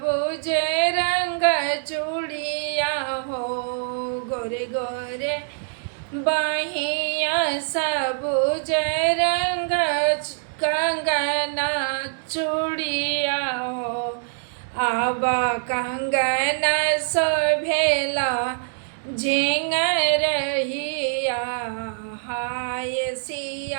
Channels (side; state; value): left; silent; digital silence